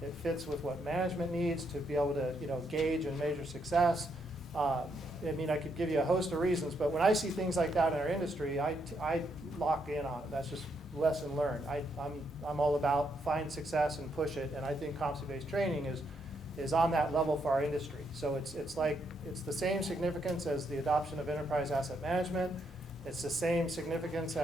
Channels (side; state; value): both; normal; correlation 0.77